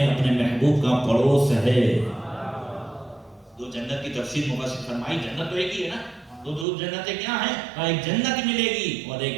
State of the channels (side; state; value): left; drops out; at 6.7 s